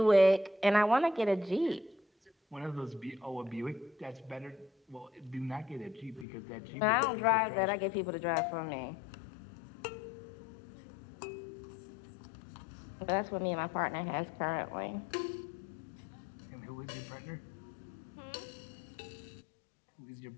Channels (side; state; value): right; drops out; at 6.2 s